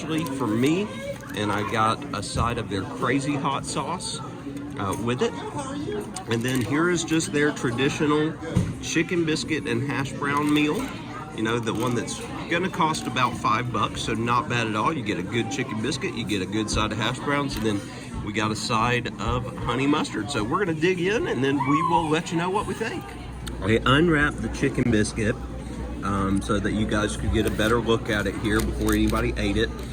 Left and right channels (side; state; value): both; identical; correlation 1.00